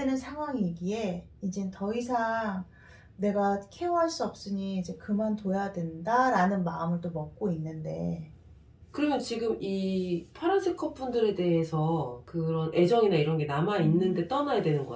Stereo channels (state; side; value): identical; both; correlation 1.00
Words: 상황이기에 이젠 더 이상 내가 케어할 수 없으니 이제 그만둬야 된다라는 마음을 또 먹고 있는데, 그러면 지금 이 파란색 커플들에 대해서 그런 애정이나 이런 게 남아있는데 떠나야 되는